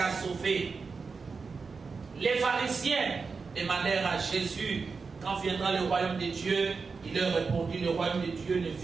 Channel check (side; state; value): left; quieter; 4.8 dB